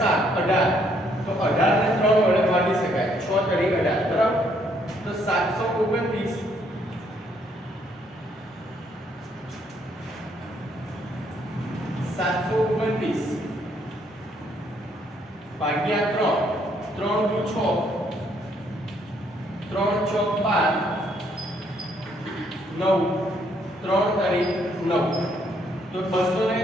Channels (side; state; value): both; normal; correlation 0.69